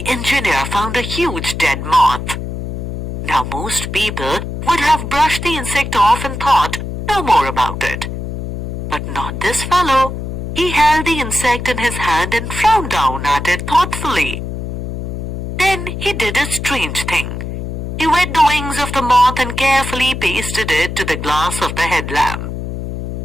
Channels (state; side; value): noise; left; hum, 5 dB below the sound